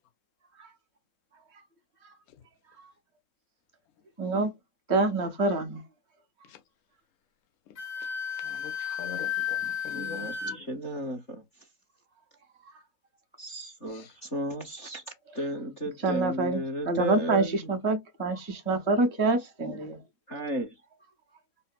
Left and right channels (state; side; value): late; right; 3.8 ms